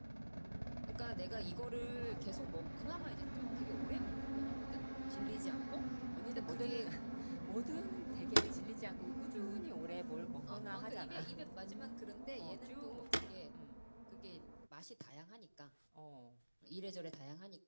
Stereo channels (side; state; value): both; inverted; correlation -1.00